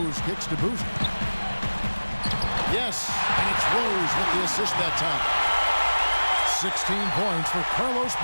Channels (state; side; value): inverted; both; correlation -1.00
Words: kicks to Boozer. Yes, and it's Rose with the assist that time. 16 points for Carlos